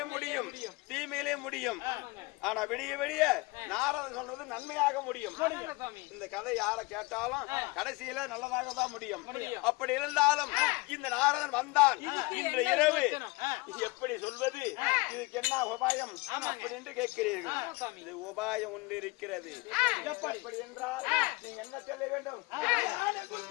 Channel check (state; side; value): quieter; right; 24.5 dB